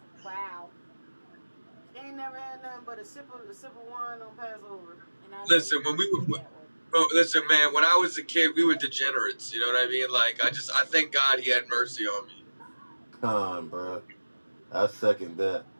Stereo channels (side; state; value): both; inverted; correlation -1.00